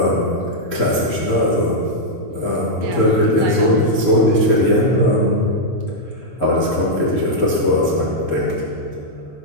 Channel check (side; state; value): both; normal; correlation -0.05